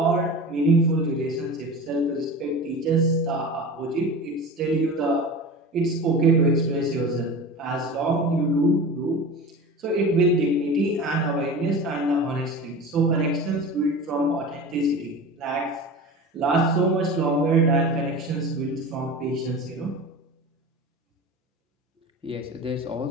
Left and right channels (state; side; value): normal; both; correlation 0.32